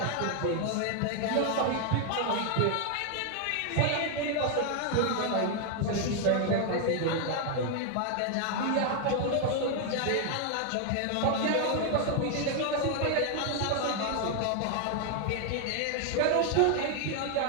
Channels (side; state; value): both; different; correlation 0.00